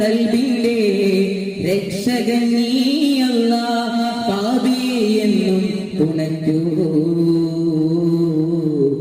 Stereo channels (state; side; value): identical; both; correlation 1.00